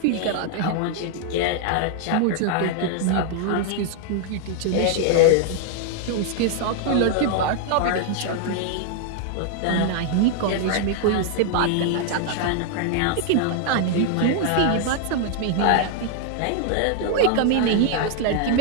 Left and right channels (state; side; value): different; both; correlation 0.00